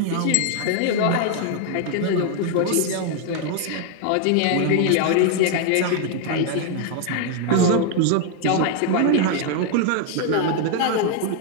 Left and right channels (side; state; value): both; different; correlation 0.00